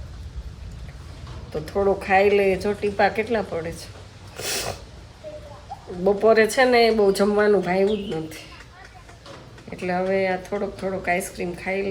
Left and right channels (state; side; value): identical; both; correlation 1.00